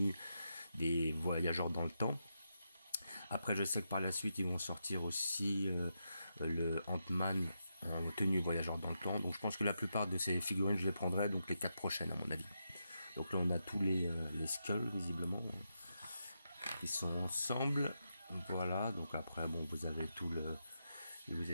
des voyageurs dans le temps. Après, je sais que par la suite, ils vont sortir aussi le Ant-Man en tenue voyageur dans le temps. Donc, je pense que la plupart de ces figurines, je les prendrai, donc les 4 prochaines, à mon avis. Donc là, on a tous les skulls, visiblement, qui sont ensemble. Voilà, donc après, bon, vous avez tout le... Je vous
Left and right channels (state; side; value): inverted; both; correlation -0.85